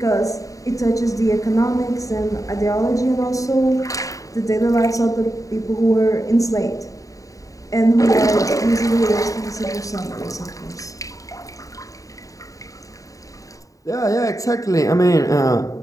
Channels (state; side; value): late; right; 0.16 ms